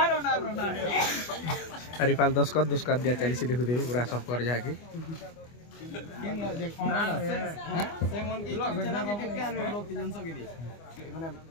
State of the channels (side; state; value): right; late; 24 ms